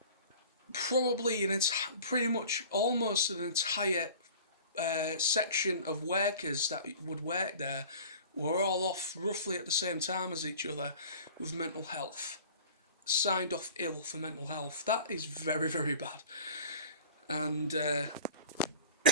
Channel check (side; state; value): both; inverted; correlation -0.43